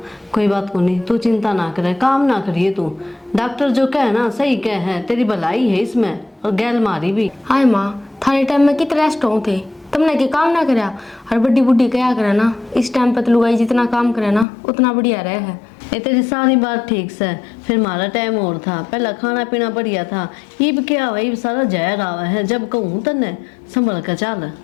कोई बात को नहीं, तू चिंता ना करे, काम ना करिए तू। डॉक्टर जो कहे ना सही कहे है, तेरी भलाई है इसमें और गैल मारी भी। हाय माँ, थाने टाइम में कितने रेस्ट हो थे, तुमने के काम ना करा। और बड्डी बुड्ढी क्या करे ना, इस टाइम पर तो लुगाई जितना काम करे ना उतना बढ़िया रहे है। ये तेरी सारी बात ठीक से, फिर हमारा टाइम और था, पहला खाना पीना बढ़िया था। इब क्या हुआ, इब सारा जहर आवा है, जब कहूँ तने संभल कर चल।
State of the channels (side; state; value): right; drops out; at 14.5 s